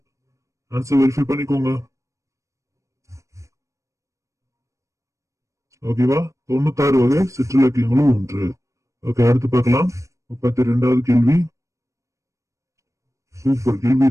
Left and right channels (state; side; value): late; left; 0.15 ms